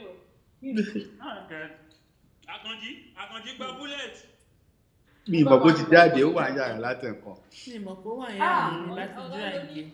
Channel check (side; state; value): both; identical; correlation 1.00